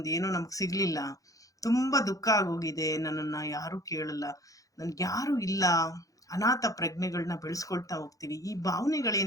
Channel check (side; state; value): right; late; 0.17 ms